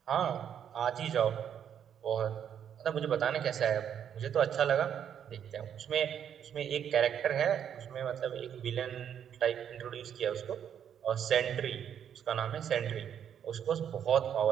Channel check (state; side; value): quieter; left; 8.9 dB